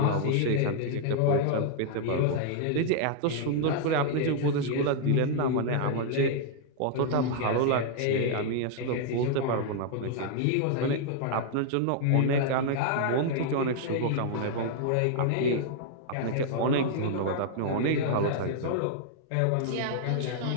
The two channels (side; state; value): both; different; correlation -0.01